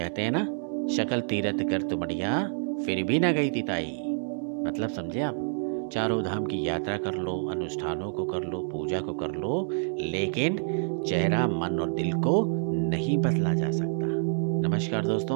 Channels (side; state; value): left; silent; digital silence